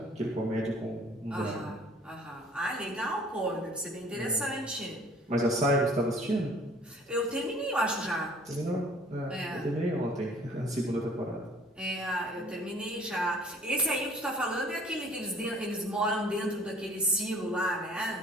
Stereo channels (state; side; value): normal; both; correlation 0.54